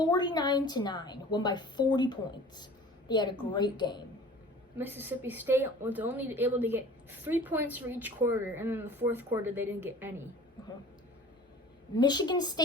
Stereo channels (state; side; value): normal; both; correlation 0.45